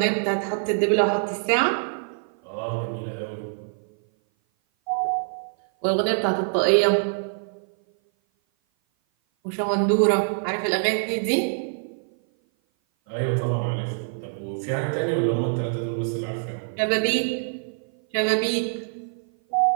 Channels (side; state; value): left; silent; 56 dB below the other